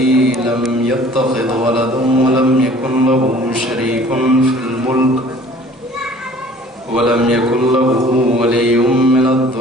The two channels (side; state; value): both; normal; correlation 0.50